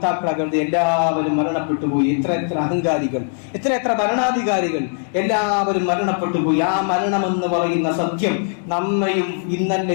എല്ലാവരും മരണപ്പെട്ടു പോയി. എത്ര അഹങ്കാരികൾ, എത്ര ഭരണാധികാരികൾ, എല്ലാവരും മരണപ്പെട്ടു പോയി. ആ മരണമെന്ന് പറയുന്ന സത്യം നമ്മയും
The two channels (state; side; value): silent; right; digital silence